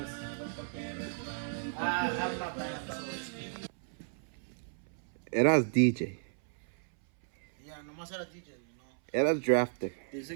I have my band, so it's... Eras DJ. Yeah, nomás era DJ, no. Eras drafter.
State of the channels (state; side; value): silent; left; 55 dB below the other